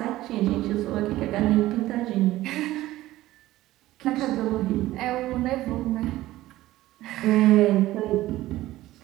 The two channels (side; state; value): left; quieter; 16.0 dB